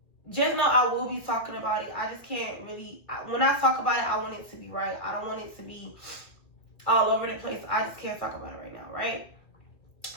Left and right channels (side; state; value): right; late; 2.4 ms